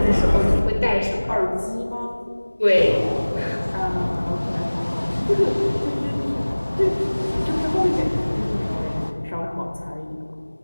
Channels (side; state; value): both; inverted; correlation -1.00